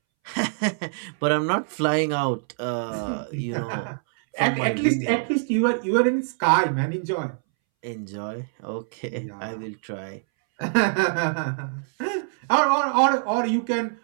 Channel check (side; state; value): left; silent; 62 dB below the other